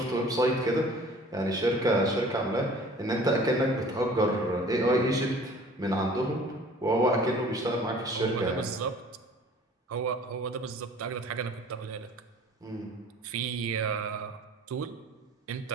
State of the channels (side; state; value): both; normal; correlation 0.48